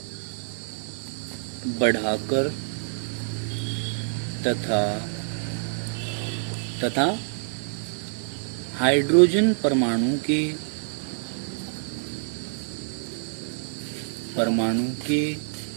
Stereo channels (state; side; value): silent; left; digital silence